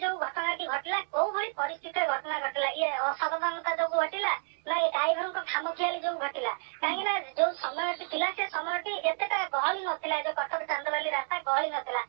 जो घटना घटिला कोउ भଳି परिस्थिति रे घटना घटिला ये असावधानता जो घटिला ना ये ड्राइवर को खामखियाली जो घटिला कहीं जो समय थिला से समय एतेटा गहली नथिला जो कटक चांदबाली रास्ता गहली नथिला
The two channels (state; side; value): silent; left; digital silence